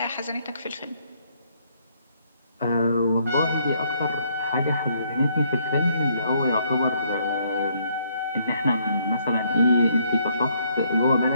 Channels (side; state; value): both; inverted; correlation -0.69